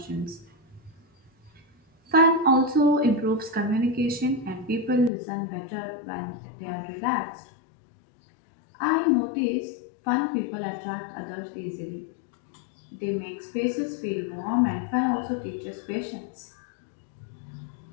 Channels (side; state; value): right; drops out; at 5.1 s